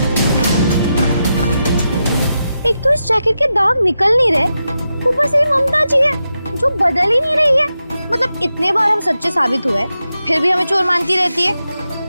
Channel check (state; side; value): inverted; both; correlation -0.88